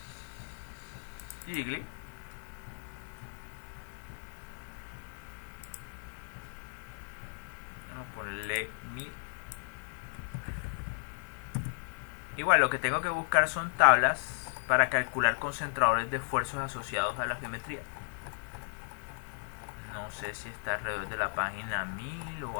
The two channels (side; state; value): right; silent; digital silence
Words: Gigli, vamos a ponerle 1000. Igual lo que tengo que buscar son tablas para calcular concentradores de esfuerzos asociados a la geometría. No sé si está alrededor de la página 1000 o